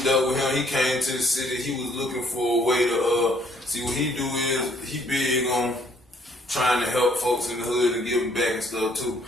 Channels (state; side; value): normal; both; correlation 0.65